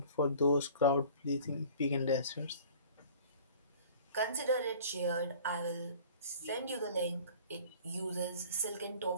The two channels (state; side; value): inverted; both; correlation -0.46